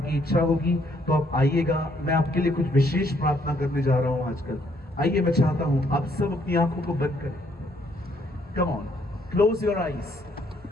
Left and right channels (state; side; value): normal; both; correlation 0.68